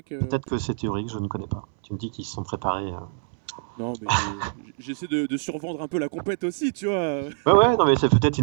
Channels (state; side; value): silent; left; 61 dB below the other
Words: Peut-être que c'est théorique, je ne connais pas. Tu me dis qu'ils se sont préparés... Non, mais j'essaie de survendre un peu la compète aussi, tu vois. Ouais, non, mais c'est peut-être